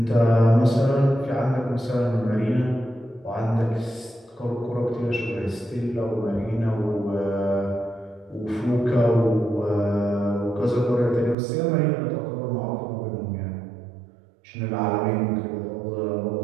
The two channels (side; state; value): left; drops out; at 11.4 s